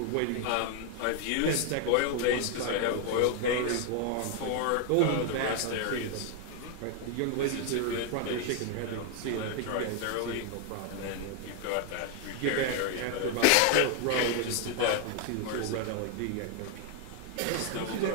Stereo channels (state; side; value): different; both; correlation 0.01